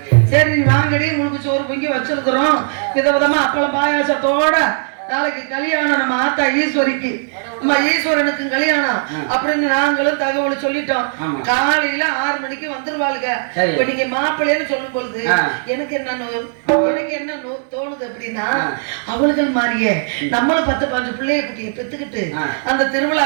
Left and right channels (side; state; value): left; silent; 68 dB below the other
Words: சரி நீ வாங்கடி, உங்களுக்கு சோறு பொங்கி வச்சிருக்கிறோம், விதவிதமா அப்பளம் பாயாசத்தோட நாளைக்கு கல்யாணம் நம்ம ஆத்தா ஈஸ்வரிக்கு, நம்ம ஈஸ்வரனுக்கு கல்யாணம் அப்படின்னு நாங்களும் தகவல் சொல்லிட்டோம். காலையில 6 மணிக்கு வந்துருவாளுங்க. இப்ப நீங்க மாப்பிள்ளைன்னு சொல்லும் பொழுது எனக்கு என்ன தோணுது அப்படின்னா, அவளுகள் மாதிரியே நம்மளும் 10-15 பிள்ளைய குட்டியை பெத்துக்கிட்டு அந்த